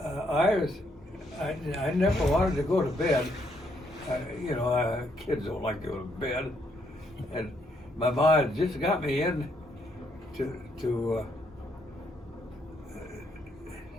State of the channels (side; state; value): both; normal; correlation 0.73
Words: I never wanted to go to bed. You know, kids don't like to go to bed. And my mom just got me in to